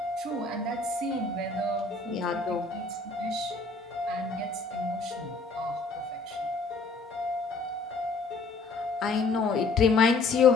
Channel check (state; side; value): quieter; right; 3.9 dB